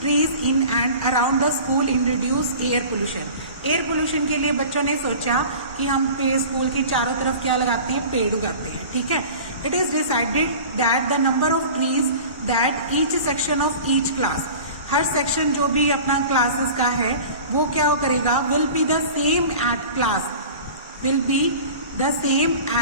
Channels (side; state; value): both; inverted; correlation -0.39